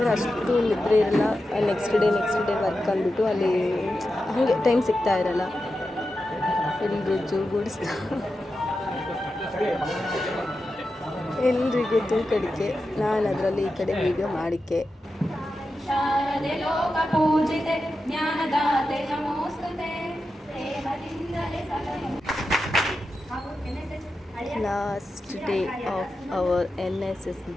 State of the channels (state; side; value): normal; both; correlation 0.90